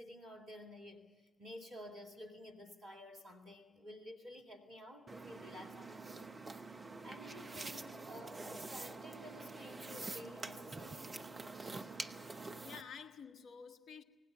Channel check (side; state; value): both; normal; correlation 0.83